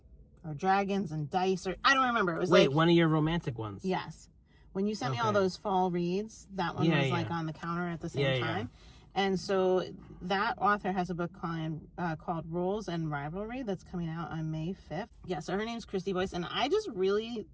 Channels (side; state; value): both; identical; correlation 1.00